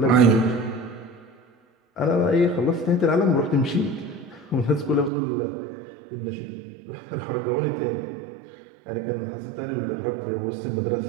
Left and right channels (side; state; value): left; drops out; at 5.1 s